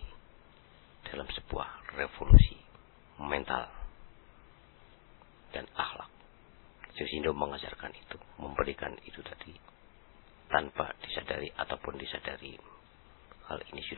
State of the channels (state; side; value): silent; right; digital silence